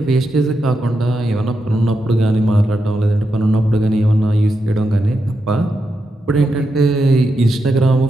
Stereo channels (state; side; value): normal; both; correlation 0.86